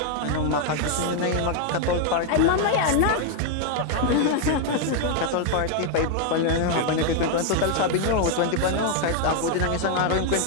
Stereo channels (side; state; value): both; different; correlation 0.00